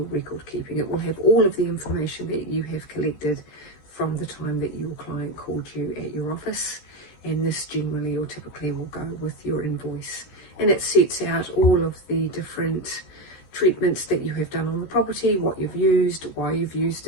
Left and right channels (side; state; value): right; late; 13 ms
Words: record keeping. It will have all of the information that you have collected from the time that your client called you at your office, and this generally or typically will go with your invoice, and it sets out all of the different treatments that you have done on the property, what you've used, why you've used